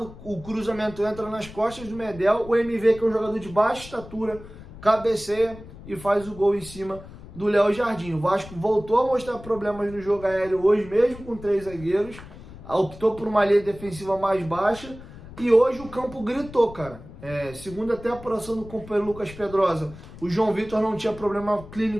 o cruzamento entra nas costas do Medel, o MV, que é um jogador de baixa estatura, cabeceia e faz o gol em cima do Léo Jardim. O Vasco voltou a mostrar problemas no jogo aéreo hoje, mesmo com 3 zagueiros, optou por uma linha defensiva mais baixa, e hoje o campo gritou, cara. Segundo até a apuração do companheiro Lucas Pedrosa, o João Vitor não tinha problema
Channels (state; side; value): noise; left; rumble, 16 dB below the sound